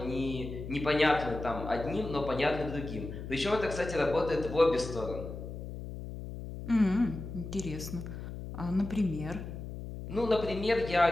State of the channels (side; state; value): left; noise; hum, 9 dB below the sound